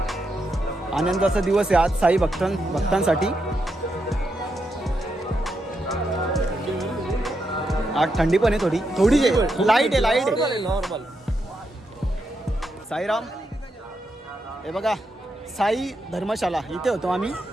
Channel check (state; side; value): normal; both; correlation 0.83